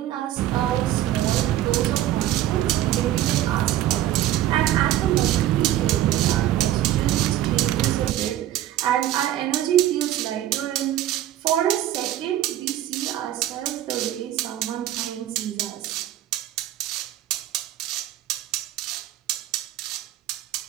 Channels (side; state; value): left; quieter; 13.2 dB